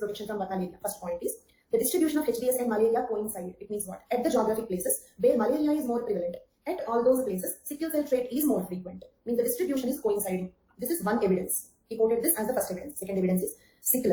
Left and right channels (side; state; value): both; identical; correlation 1.00